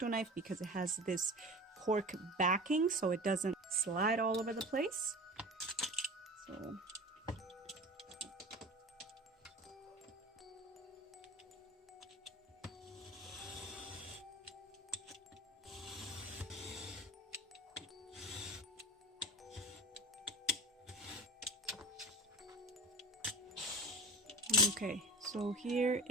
knife because it has this cork backing so it doesn't slide all over the place. So okay, so here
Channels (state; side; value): normal; both; correlation 0.34